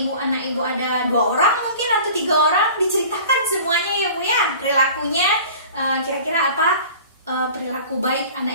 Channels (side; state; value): both; inverted; correlation -0.42